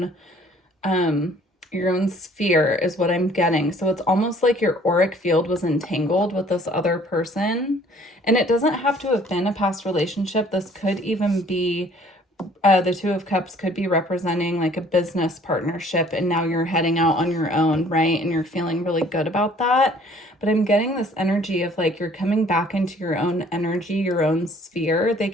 sphere is what I'm getting. So it's almost like your auric field was entangled with this other person. And it doesn't have to have been a past relationship. This could even be, the Two of Cups could be representing like a business partnership, and now you're heading out on your own, right? And you're feeling really good about that. But I'm getting this energy of like you're coming back into your own energy, your own sphere. They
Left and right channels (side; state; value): both; normal; correlation 0.56